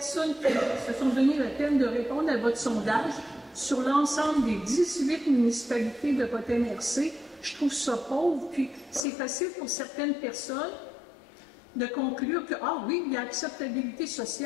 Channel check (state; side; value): drops out; right; at 9.0 s